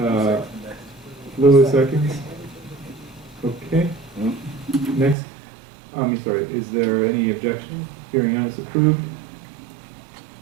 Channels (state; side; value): drops out; left; at 5.2 s